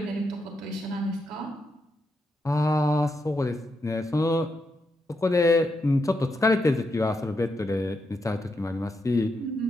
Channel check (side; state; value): both; normal; correlation 0.83